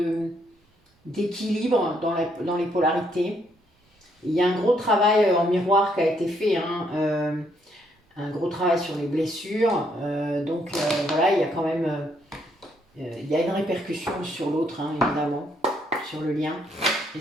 d'équilibre dans les polarités. Il y a un gros travail en miroir qui a été fait, hein, un gros travail sur les blessures. Donc voilà, il y a quand même il y a une répercussion sur l'autre, hein, évidemment, sur le lien et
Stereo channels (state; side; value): normal; both; correlation 0.72